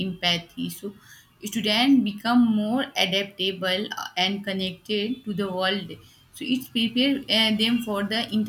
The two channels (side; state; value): both; identical; correlation 1.00